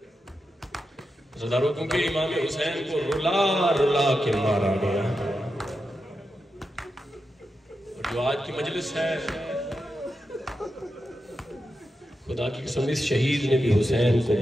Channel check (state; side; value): normal; both; correlation 0.88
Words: زداروں کیونکہ امام حسین کو رلا رلا کے مارا گیا، اور جو آج کی مجلس ہے خدا کی قسم اس شہید نے بھی حسین کو